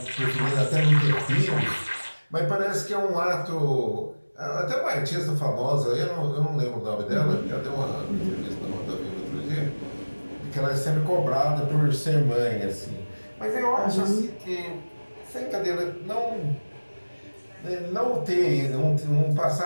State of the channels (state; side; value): inverted; both; correlation -1.00